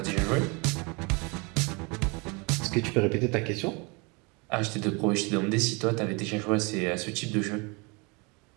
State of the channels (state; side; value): quieter; left; 29.4 dB